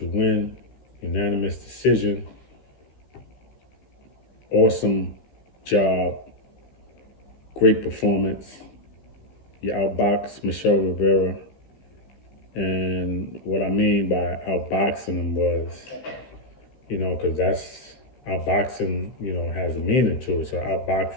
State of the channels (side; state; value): right; late; 15 ms